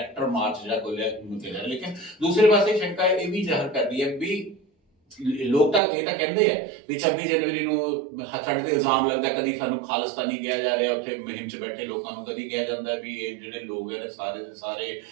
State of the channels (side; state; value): left; drops out; at 5.8 s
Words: ਮਾਰਚ ਜਿਹੜਾ ਖੋਲਿਆ ਗਿਆ। ਲੇਕਿਨ ਦੂਸਰੇ ਪਾਸੇ ਸ਼ੰਕਾ ਇਹ ਵੀ ਜ਼ਾਹਰ ਕਰਦੀ ਹੈ ਵੀ ਲੋਕ ਤਾਂ ਇਹ ਤਾਂ ਕਹਿੰਦੇ ਆ ਵੀ 26 ਜਨਵਰੀ ਨੂੰ ਸਾਡੇ ਤੇ ਇਲਜ਼ਾਮ ਲੱਗਦਾ ਕਦੀ ਸਾਨੂੰ ਖਾਲਿਸਤਾਨੀ ਕਿਹਾ ਜਾ ਰਿਹਾ, ਉੱਥੇ ਮੁਹਿੰਮ 'ਚ ਬੈਠੇ ਲੋਕਾਂ ਨੂੰ ਕਦੀ ਕਿਹਾ ਜਾਂਦਾ ਵੀ ਇਹ ਜਿਹੜੇ ਲੋਕ ਹੈ ਸਾਰੇ ਦੇ ਸਾਰੇ